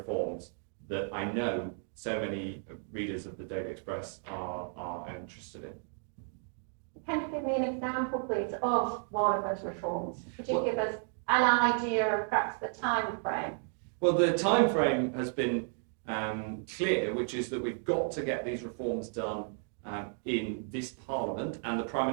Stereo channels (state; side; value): silent; left; 56 dB below the other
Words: that I know so many readers of the Daily Express are interested in. Can you give me an example, please, of one of those reforms? Could you give us an idea of perhaps the time frame? Well, the time frame has been clear, which is that we've got to get these reforms done in this Parliament, and the Prime